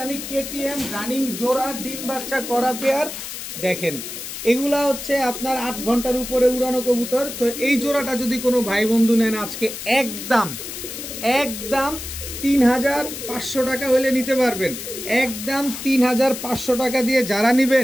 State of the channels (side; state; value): left; noise; hiss, 8 dB below the sound